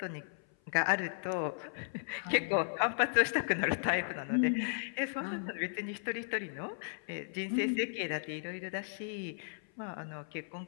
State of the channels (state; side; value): silent; right; 54 dB below the other